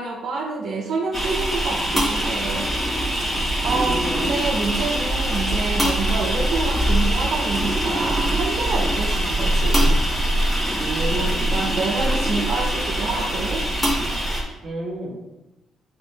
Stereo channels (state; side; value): normal; both; correlation 0.83